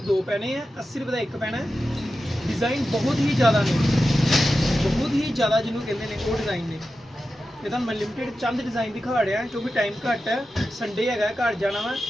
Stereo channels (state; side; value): normal; both; correlation 0.92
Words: ਪੈਣੇ ਆ, 80 ਰੁਪਏ ਦਾ ਇੱਕ ਪੈਣਾ। ਡਿਜ਼ਾਈਨ ਬਹੁਤ ਹੀ ਜ਼ਿਆਦਾ ਨੇ, ਬਹੁਤ ਹੀ ਜ਼ਿਆਦਾ ਜਿਹਨੂੰ ਕਹਿੰਦੇ ਨੇ ਉਹ ਡਿਜ਼ਾਈਨ ਨੇ। ਇਹ ਤਾਂ ਮੈਂ ਲਿਮਿਟਡ ਚੰਦ ਡਿਜ਼ਾਈਨ ਦਿਖਾ ਰਿਹਾ ਕਿਉਂਕਿ ਟਾਈਮ ਘੱਟ ਹੈ, ਸੰਡੇ ਹੈਗਾ, ਘਰ ਜਾਣਾ ਵਾ।